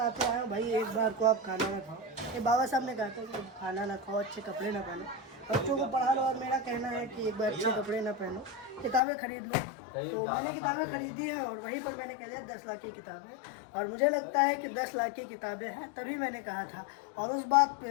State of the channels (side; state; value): right; drops out; at 9.0 s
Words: आया हूँ भाई, एक बार को आप खाना ना खाओ। ये बाबा साहब ने कहा था कि खाना ना खाओ, अच्छे कपड़े ना पहनो, बच्चों को पढ़ा लो। और मेरा कहना है कि एक बार अच्छे कपड़े ना पहनो, किताबें खरीद लो। तो मैंने किताबें खरीदी हैं और वहीं पर मैंने कह दिया 10 लाख की किताबें, और मुझे लगता है कि 10 लाख की किताबें हैं, तभी मैंने कहा था। और उस बात